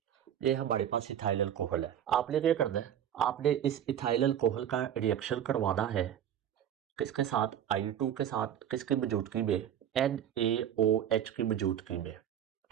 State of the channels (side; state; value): left; quieter; 10.0 dB